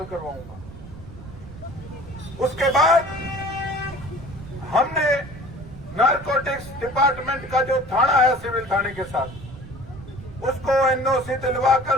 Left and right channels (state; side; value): noise; right; rumble, 15 dB below the sound